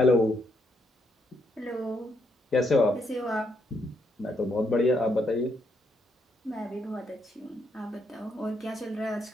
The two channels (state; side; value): normal; both; correlation 0.76